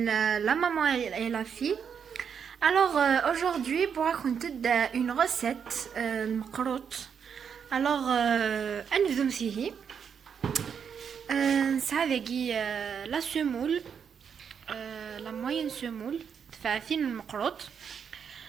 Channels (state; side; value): quieter; left; 7.1 dB